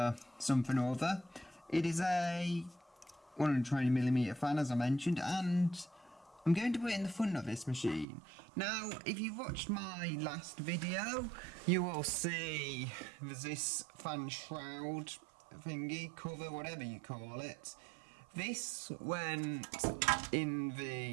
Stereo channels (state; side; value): drops out; left; at 8.1 s